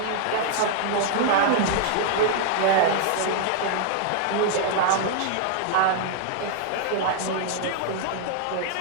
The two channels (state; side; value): different; both; correlation 0.00